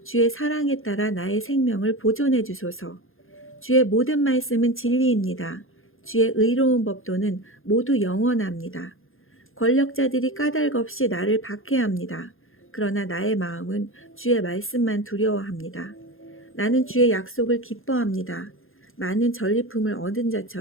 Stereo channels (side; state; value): right; late; 0.60 ms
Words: 주의 사랑에 따라 나의 생명을 보존해 주소서. 주의 모든 말씀은 진리입니다. 주의 의로운 법도는 모두 영원합니다. 권력자들이 까닭 없이 나를 박해합니다. 그러나 나의 마음은 주의 말씀만 두려워합니다. 나는 주의 약속을 기뻐합니다. 많은 전리품을 얻은